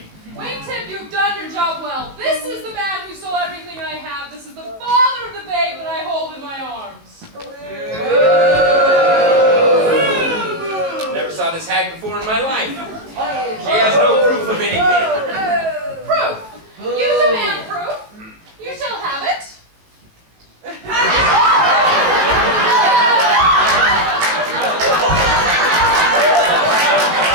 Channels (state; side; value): late; left; 18 ms